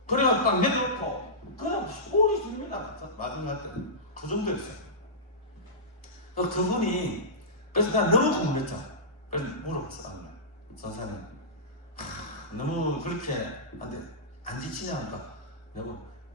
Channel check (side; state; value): both; normal; correlation -0.16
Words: 그래가 딱 내려놓고 그냥 소리 줍니다. 마지막 때 그 정도였어요. 그분이 그래서 난 너무 궁금했죠. 그래서 물어봤어. 나는 선생님 너무 그렇게 안 지치냐 하니까 내가